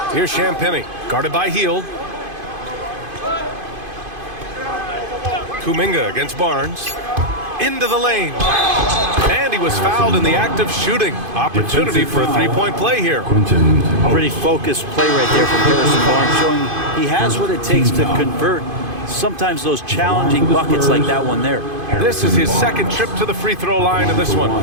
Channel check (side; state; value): left; late; 2.5 ms